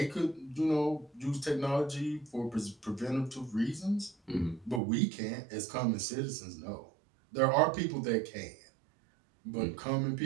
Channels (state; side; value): drops out; left; at 4.8 s